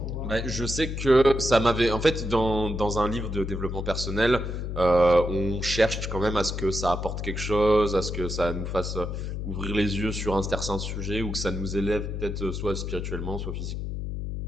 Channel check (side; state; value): left; noise; hum, 4 dB below the sound